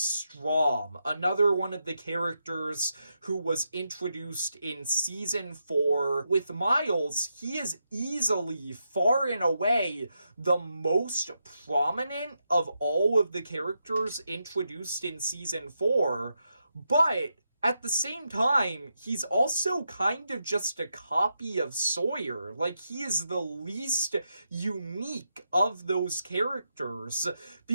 another one of the characters who was introduced in season 4. With Miles, he is easily, far and away, the most prominent of all of the characters introduced in season 4, but at the same time, he's also kind of just a copy of Sawyer. Like, he is the least unique of those characters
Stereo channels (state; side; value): inverted; both; correlation -0.84